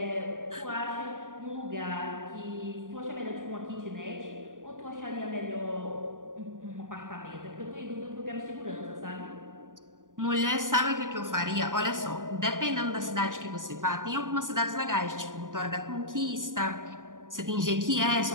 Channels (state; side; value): late; left; 0.89 ms